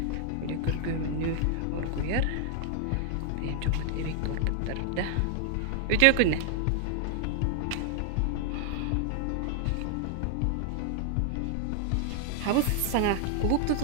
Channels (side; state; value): both; different; correlation 0.00